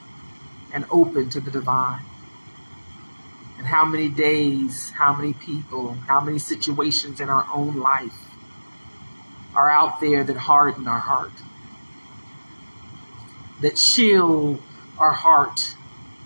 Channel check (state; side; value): inverted; both; correlation -1.00